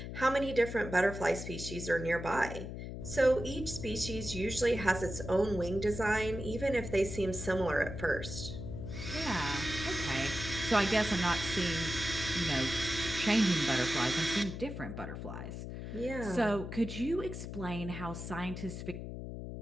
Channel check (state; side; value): noise; left; hum, 7 dB below the sound